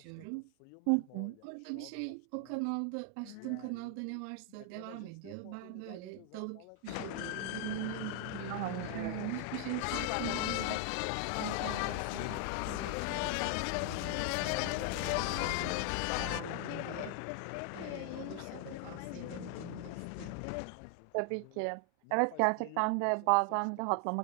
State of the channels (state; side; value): different; both; correlation 0.00